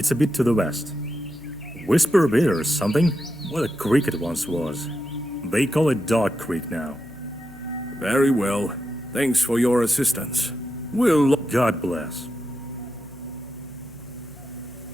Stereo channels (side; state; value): left; noise; hum, 22 dB below the sound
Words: a bit to the west. Whisper a bit or something? What a creek it once was. They call it Dog Creek now. Very well. Thanks for your assistance. We'll... God bless.